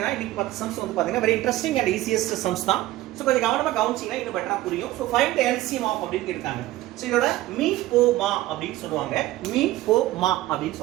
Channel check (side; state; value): left; quieter; 16.2 dB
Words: இன்னைக்கு 10 சம்ஸ் வந்து பார்த்தீங்கன்னா very interesting and easiest sums தான். ஸோ கொஞ்சம் கவனமாக கவனிச்சிங்கன்னா இன்னும் பெட்டராக புரியும். So find the LCM of அப்படின்னு இருக்காங்க. ஸோ இதோட மீ போ மா அப்படின்னு சொல்லுவாங்க. மீ போ மா அப்படின்னு